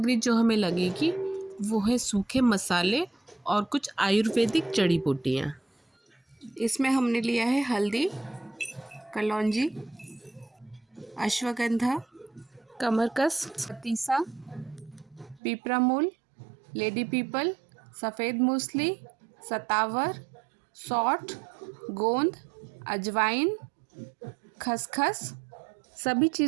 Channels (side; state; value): left; drops out; at 15.4 s